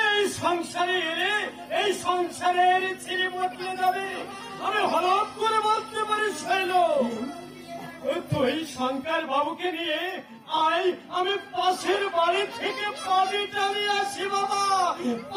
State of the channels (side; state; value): both; identical; correlation 1.00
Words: এই সংসারে এলে এই সংসারের ছেড়ে বদলে যাবে, আমি হঠাৎ করে বলতে পারি শৈল। তুই শঙ্কর বাবুকে নিয়ে আয়, আমি পাশের বাড়ি থেকে পানি টানিয়ে আসি বাবা,